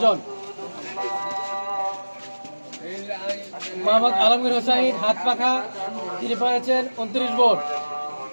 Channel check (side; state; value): both; inverted; correlation -1.00